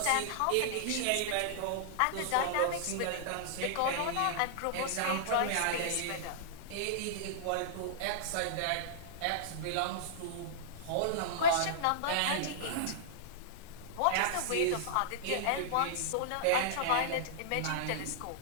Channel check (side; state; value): both; different; correlation -0.02